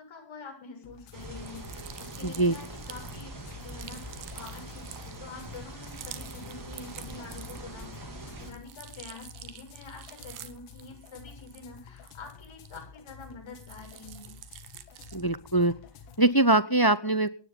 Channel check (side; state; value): right; late; 1.0 ms